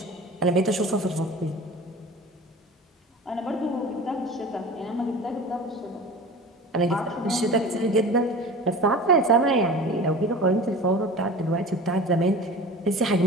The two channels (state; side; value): normal; both; correlation 0.37